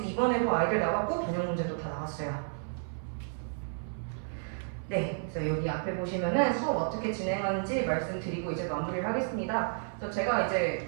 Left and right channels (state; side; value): silent; left; 57 dB below the other